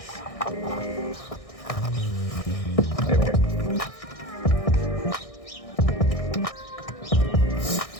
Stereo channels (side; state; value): right; late; 1.6 ms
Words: There we go.